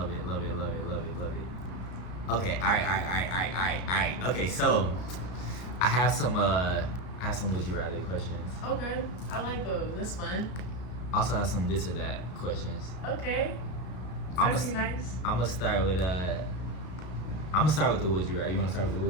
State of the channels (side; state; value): right; late; 33 ms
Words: Okay, all right. Okay, so I have some would you rather questions. Okay, I like those. That's fun. Also have some this or that questions. Okay. I'm That's nice. gonna start with the would you rather. You wanna start with the